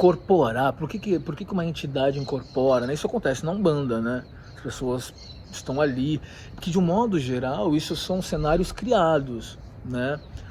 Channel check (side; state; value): both; identical; correlation 1.00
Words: Por que uma entidade incorpora, né? Isso acontece na Umbanda, né? As pessoas estão ali, porque de um modo geral isso são cenários criados, né?